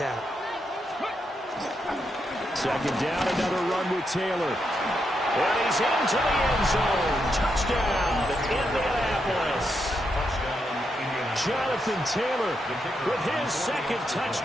Second down, another run with Taylor. And he's into the end zone. Touchdown, Indianapolis. Jonathan Taylor with his second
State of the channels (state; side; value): normal; both; correlation 0.82